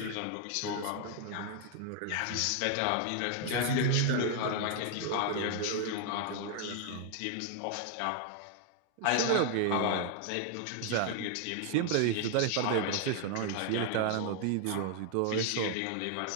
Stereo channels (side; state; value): both; different; correlation 0.00